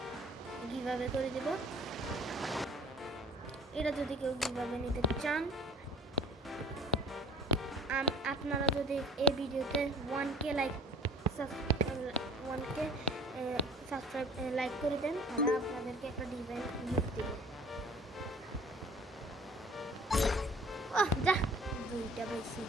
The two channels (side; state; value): both; normal; correlation 0.47